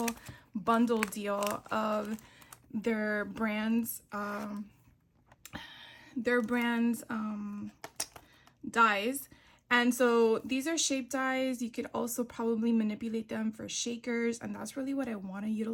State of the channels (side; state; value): both; identical; correlation 1.00